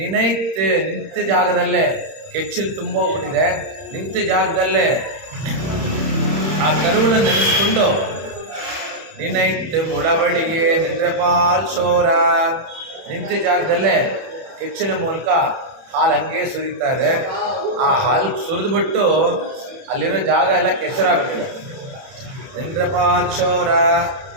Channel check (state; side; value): late; left; 31 ms